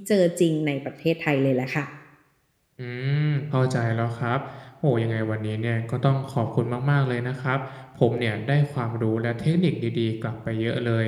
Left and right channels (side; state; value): both; identical; correlation 1.00